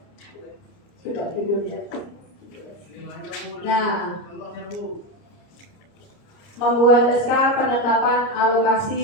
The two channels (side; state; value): right; late; 29 ms